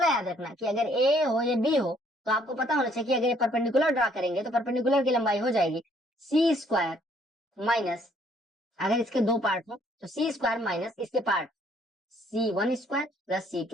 याद रखना कि अगर ए हो या बी हो तो आपको पता होना चाहिए कि अगर ये परपेंडिकुलर ड्रा करेंगे तो परपेंडिकुलर की लंबाई हो जाएगी सी स्क्वायर माइनस, अगर इसके दो पार्ट हो तो सी स्क्वायर माइनस इसके part C1 square plus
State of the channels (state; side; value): normal; both; correlation 0.64